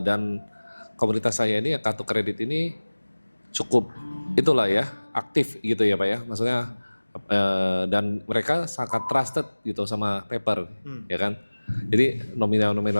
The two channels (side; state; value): both; inverted; correlation -1.00